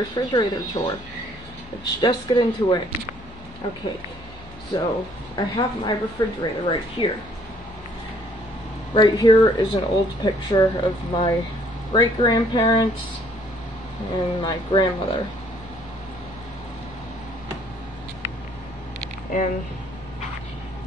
tour. Let's just get into it. Okay, so I have my refrigerator right here. Right here is an old picture of my great-grandparents and my grandmother. And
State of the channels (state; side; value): normal; both; correlation 0.62